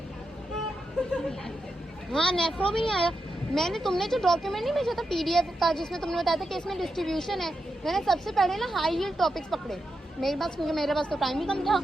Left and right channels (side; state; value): both; normal; correlation 0.87